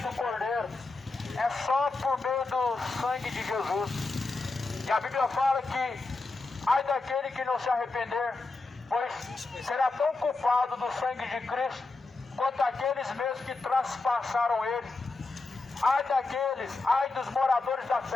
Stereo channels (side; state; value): right; quieter; 3.5 dB